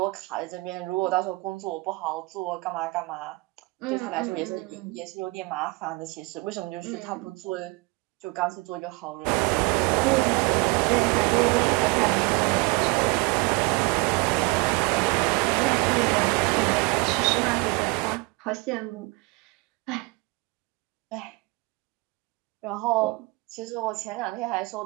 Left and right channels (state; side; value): quieter; left; 26.2 dB